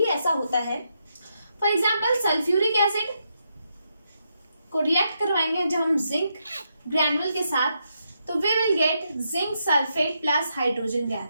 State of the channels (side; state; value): both; inverted; correlation -0.81